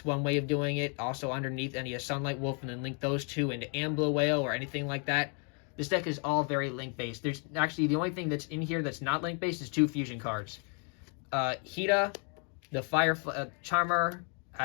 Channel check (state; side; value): quieter; right; 39.6 dB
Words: one way of doing it. Also underneath any of Sunlight Wolf, and then link those 2 into Amber Whale or anything like that. This deck is all very link based. There's actually the only thing that's in here that's not link based is 2 fusion cards. Hita, the Fire Charmer,